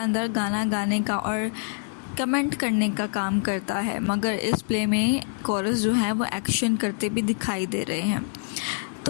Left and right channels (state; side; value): silent; right; 61 dB below the other